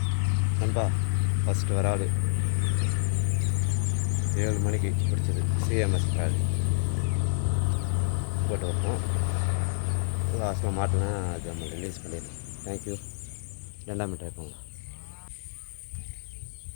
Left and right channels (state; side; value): silent; right; 59 dB below the other